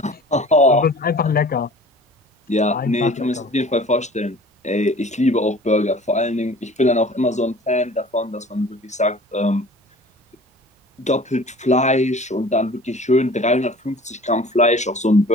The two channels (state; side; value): normal; both; correlation 0.46